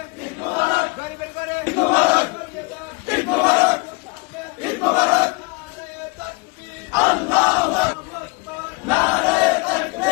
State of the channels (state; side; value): quieter; right; 28.8 dB